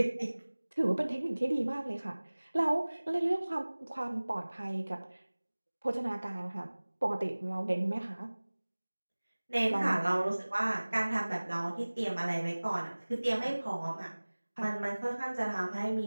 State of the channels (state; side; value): inverted; both; correlation -1.00